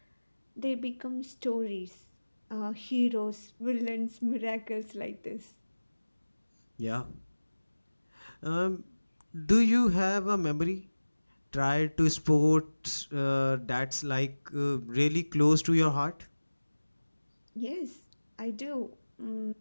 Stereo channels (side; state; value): both; inverted; correlation -1.00